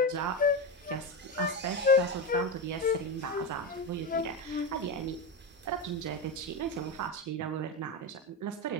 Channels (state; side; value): normal; both; correlation 0.15